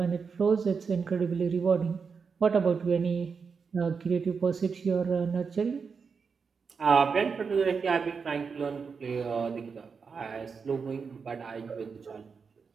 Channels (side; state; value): left; quieter; 5.5 dB